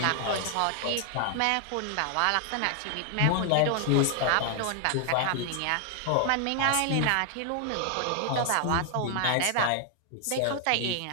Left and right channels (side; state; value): both; different; correlation 0.00